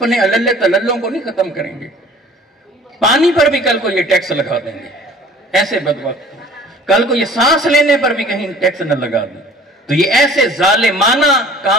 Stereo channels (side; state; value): both; normal; correlation 0.48